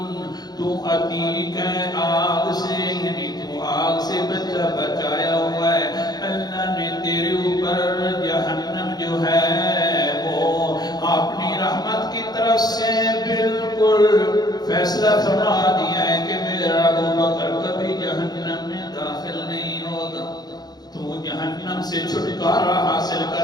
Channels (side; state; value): right; late; 0.19 ms